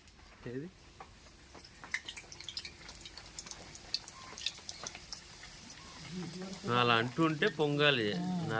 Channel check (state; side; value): identical; both; correlation 1.00